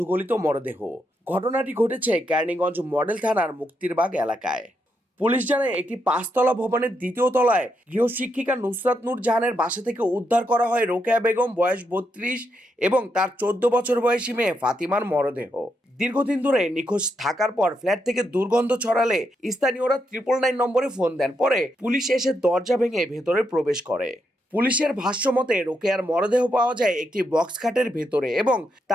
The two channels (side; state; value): both; normal; correlation 0.81